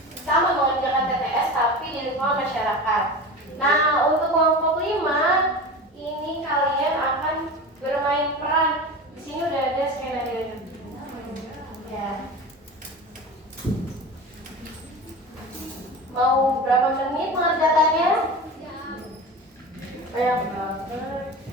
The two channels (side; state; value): both; normal; correlation 0.31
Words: sama mengerjakan TTS tapi di lingkungan masyarakat. Nah, untuk kelompok 5 ini kalian akan bermain peran. Di sini udah ada skenario. Ya. Mau berapa menit mengerjakannya? Banyak banget.